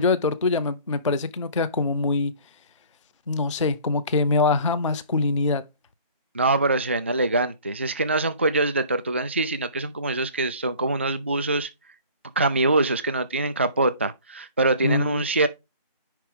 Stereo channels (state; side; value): inverted; both; correlation -0.48